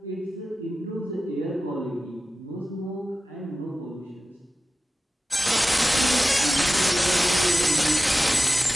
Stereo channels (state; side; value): normal; both; correlation 0.95